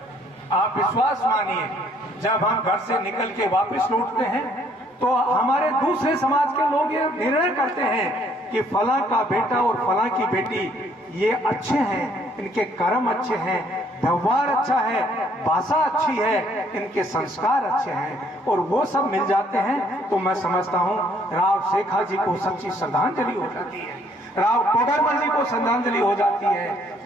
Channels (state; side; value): normal; both; correlation 0.64